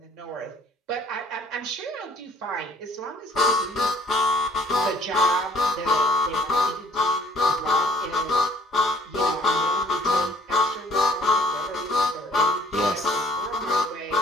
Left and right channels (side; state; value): both; normal; correlation 0.57